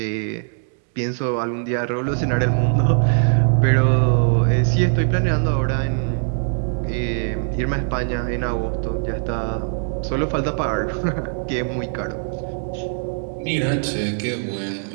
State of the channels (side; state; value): left; silent; digital silence